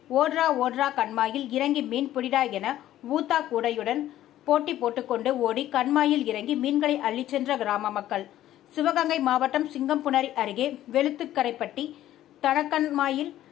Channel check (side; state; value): right; quieter; 13.2 dB